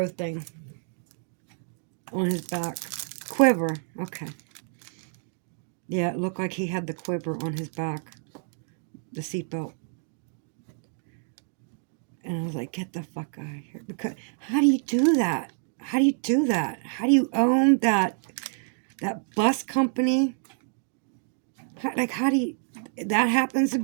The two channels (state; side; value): silent; left; 59 dB below the other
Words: thing on his back. Quiver, okay. Yeah, it looked like he had the quiver on his back, the seatbelt. And I was like, get the fuck out of here. Because how do you do that? How do you do that? How do you own that bus company? How do you... That happens to